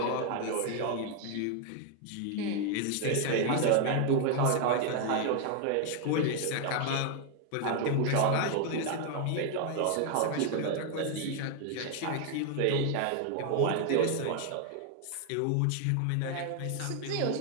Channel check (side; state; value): both; different; correlation 0.00